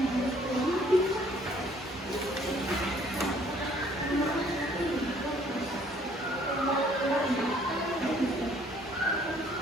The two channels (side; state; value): both; normal; correlation 0.60